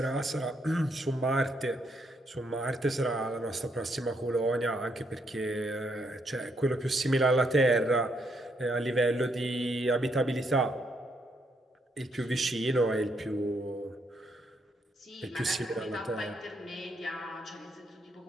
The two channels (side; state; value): both; normal; correlation 0.75